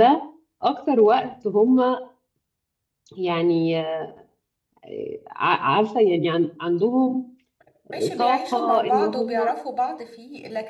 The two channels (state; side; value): identical; both; correlation 1.00